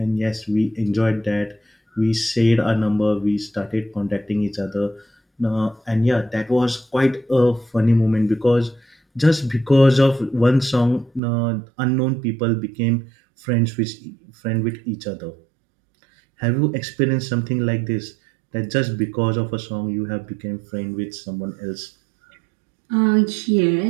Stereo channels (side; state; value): left; drops out; at 11.2 s